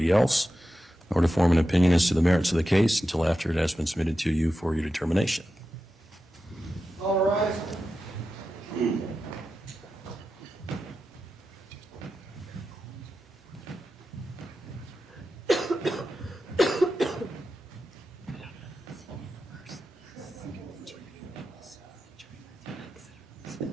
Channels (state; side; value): normal; both; correlation 0.91